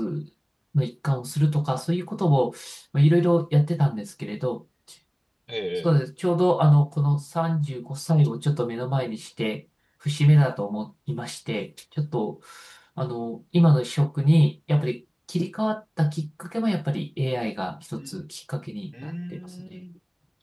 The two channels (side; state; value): both; identical; correlation 1.00